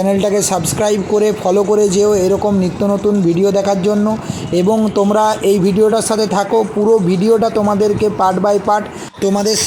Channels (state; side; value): identical; both; correlation 1.00